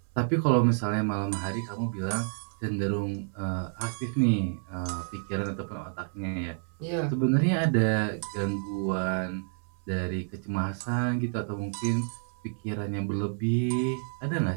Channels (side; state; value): left; silent; 58 dB below the other